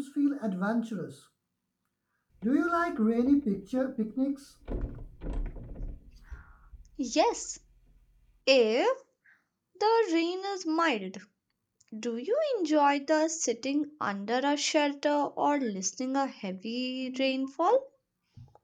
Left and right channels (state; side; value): identical; both; correlation 1.00